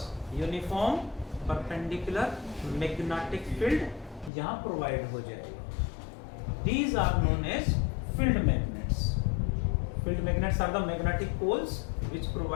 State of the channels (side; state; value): right; drops out; at 4.3 s